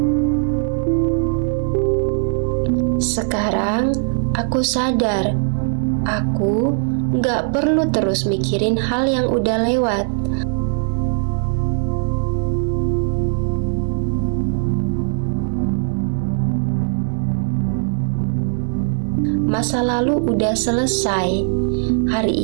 Sekarang aku sadar, aku enggak perlu terus mikirin hal yang udah lewat. Masa lalu udah selesai. Hari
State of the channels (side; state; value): left; silent; 66 dB below the other